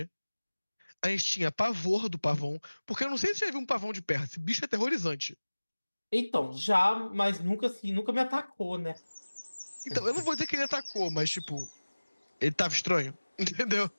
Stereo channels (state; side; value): inverted; both; correlation -1.00